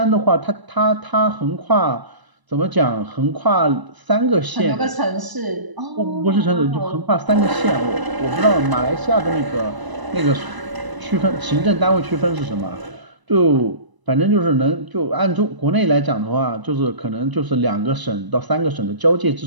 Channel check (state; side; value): late; left; 1.0 ms